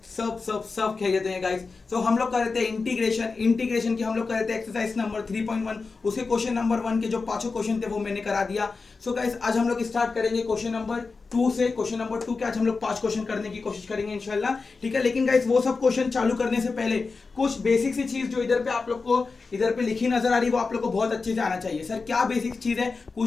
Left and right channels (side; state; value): right; quieter; 4.3 dB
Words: सब खैरियत हैं गाइस। सो हम लोग कर रहे थे इंटीग्रेशन की हम लोग कर रहे थे एक्सरसाइज नंबर 3.1। उसके क्वेश्चन नंबर 1 के जो पांचों क्वेश्चन थे वो मैंने करा दिया। सो गाइस आज हम लोग स्टार्ट करेंगे क्वेश्चन नंबर 2 से। क्वेश्चन नंबर 2 के आज हम लोग 5 क्वेश्चन करने की कोशिश करेंगे इंशाल्लाह, ठीक है। लेकिन गाइस वो सब क्वेश्चन चालू करने से पहले कुछ बेसिक सी चीज जो इधर पे आप लोग को इधर पे लिखी नजर आ रही है वो आप लोग को बहुत अच्छे से आना चाहिए। सर क्या बेसिक चीज है,